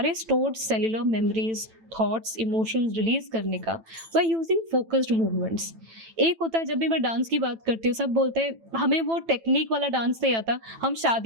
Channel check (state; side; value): late; left; 9.0 ms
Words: stored cellular memories, thoughts, emotions release करने का, बाय यूजिंग फोकस्ड मूवमेंट्स। एक होता है, जब भी मैं डांस की बात करती हूँ सब बोलते हैं हमें वो टेक्निक वाला डांस नहीं आता, हम